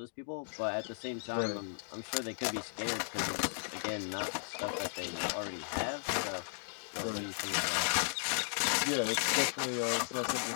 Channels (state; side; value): silent; right; digital silence